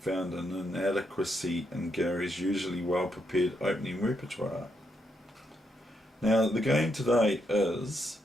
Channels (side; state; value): both; normal; correlation 0.79